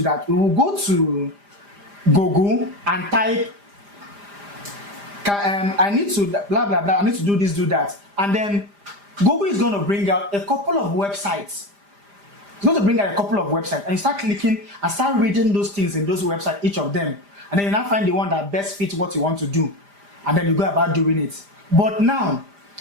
we will go to Google and type, I need to blah blah blah, I need to do this, do that, and then Google is going to bring out a couple of websites. It's going to bring out a couple of websites, and you start clicking and start reading those things in those websites, each of them, and then you now find the one that best fits what you want to do, and then you go about doing it. But now,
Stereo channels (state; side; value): late; left; 5.0 ms